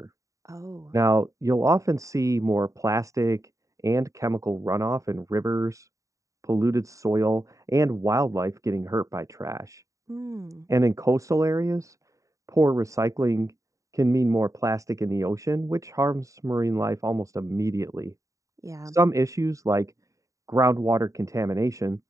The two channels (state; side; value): late; left; 0.16 ms